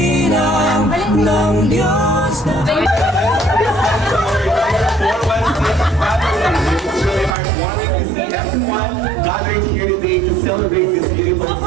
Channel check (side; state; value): left; drops out; at 7.4 s